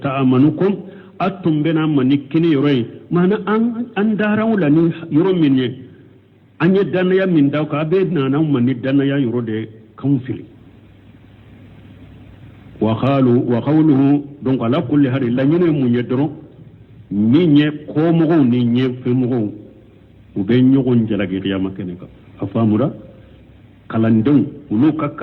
تأمنكم أتم بنا منكني يروي معنى أن داروا لني يرو مني أن يدنا من داوك أبدنا نوم من يدنا يرو دي كونفلي وقوله دونك على كل هذه لا ينو من يدرو نيني كومغو نيني فمغو وبين يغن جلاجي قيامة كنكا أفهموا kalandon ulu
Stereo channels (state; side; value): identical; both; correlation 1.00